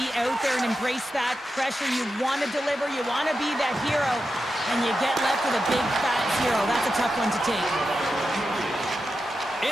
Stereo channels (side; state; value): both; normal; correlation 0.89